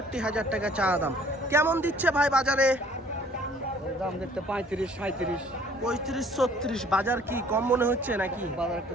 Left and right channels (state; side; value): normal; both; correlation 0.56